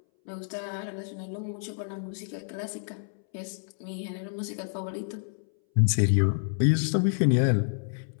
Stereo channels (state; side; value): silent; right; 59 dB below the other